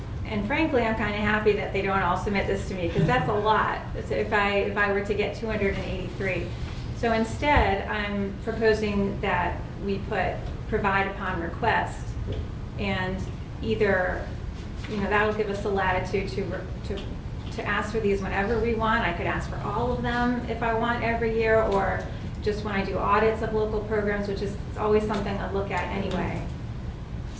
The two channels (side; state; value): both; identical; correlation 1.00